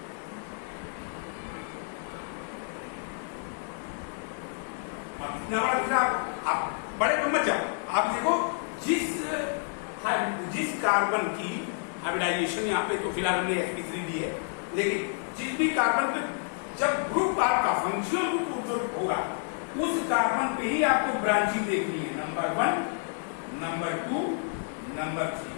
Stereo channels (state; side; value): silent; right; 58 dB below the other